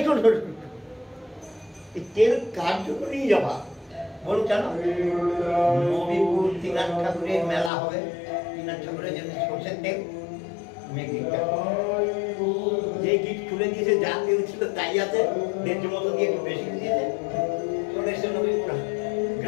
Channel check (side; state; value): right; drops out; at 7.7 s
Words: শোন, এই তেল কার জন্য নিয়ে যাবা? বলুন কেন? নবীপুর ত্রিনাথ ঠাকুরের মেলা হবে, ত্রিনাথ ঠাকুরের জন্য সরষের তেল যে গিট খুলে দিয়েছে, যা তেল ছিল তাই আছে, 1.5 মতো দিয়ে একটু বেশি দিয়েছে, চলে এসে নবীপুর